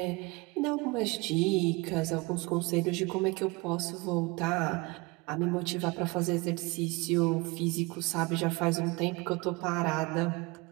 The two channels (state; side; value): quieter; left; 25.3 dB